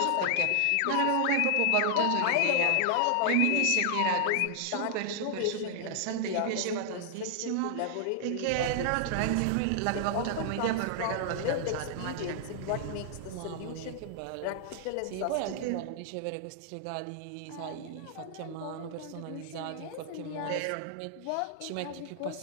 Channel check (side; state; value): both; different; correlation -0.01